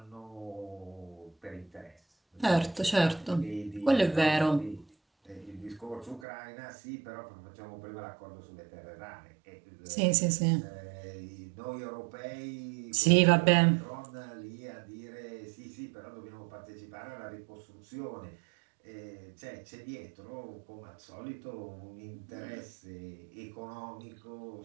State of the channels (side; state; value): left; drops out; at 6.2 s